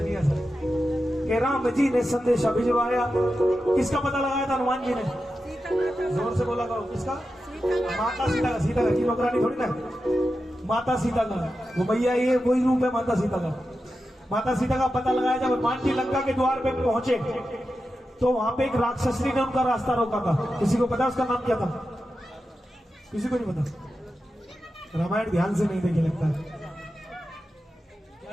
ही ऐसा कि राम जी ने संदेशा भिजवाया। किसका पता लगाया था हनुमान जी ने? जोर से बोला करो, किसका? माता सीता का। सीता का की नौकरानी थोड़ी ना, माता सीता का। वो भैया ये वही रूप है माता सीता का। माता सीता का पता लगाया। जब हनुमान जी लंका के द्वार पे पहुंचे तो वहां पे एक राक्षसनी ने उनका रास्ता रोका था। किसी को पता उसका नाम क्या था? किसी को नहीं पता। रामायण ध्यान से नहीं देखे लगता है। क्या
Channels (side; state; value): both; normal; correlation 0.91